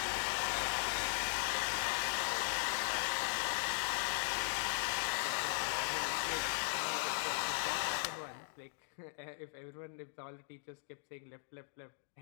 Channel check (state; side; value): silent; right; digital silence